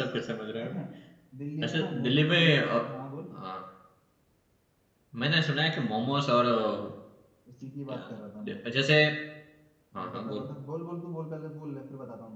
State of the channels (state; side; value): identical; both; correlation 1.00